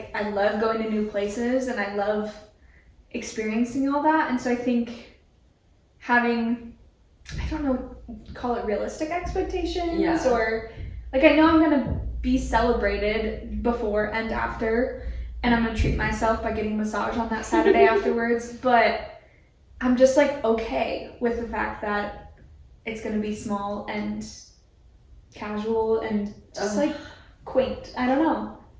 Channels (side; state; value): both; identical; correlation 1.00